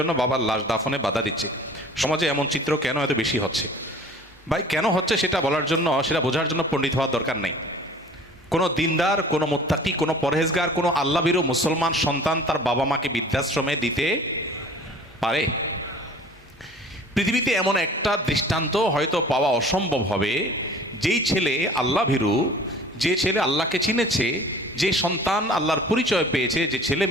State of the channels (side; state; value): both; normal; correlation 0.46